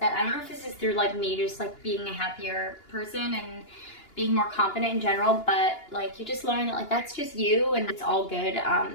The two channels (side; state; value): right; late; 2.8 ms